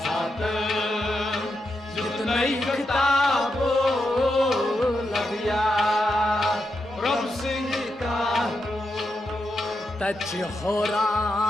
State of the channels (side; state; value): both; normal; correlation 0.85